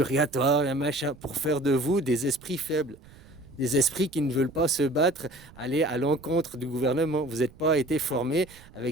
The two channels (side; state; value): right; noise; rumble, 23 dB below the sound